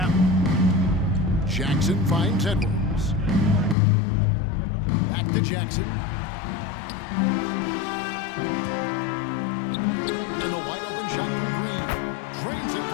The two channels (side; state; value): right; drops out; at 3.8 s